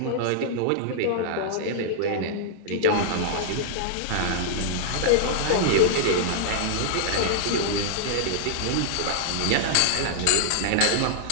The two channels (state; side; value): different; both; correlation -0.01